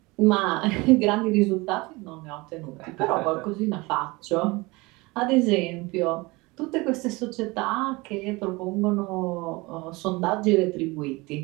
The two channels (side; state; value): left; quieter; 23.7 dB